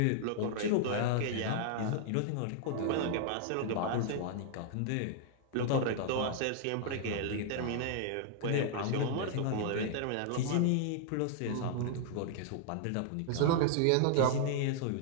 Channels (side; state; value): both; different; correlation -0.01